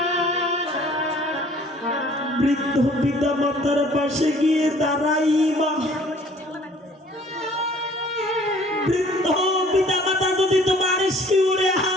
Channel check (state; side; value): normal; both; correlation 0.55